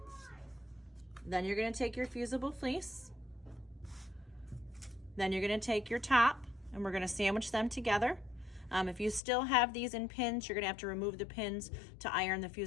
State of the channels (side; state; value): right; drops out; at 9.2 s